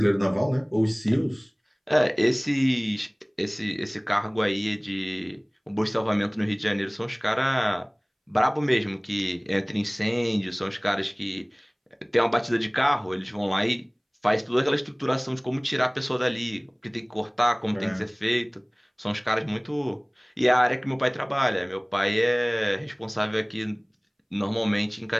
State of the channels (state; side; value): identical; both; correlation 1.00